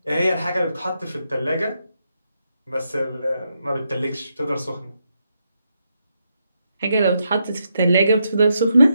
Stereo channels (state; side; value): inverted; both; correlation -0.82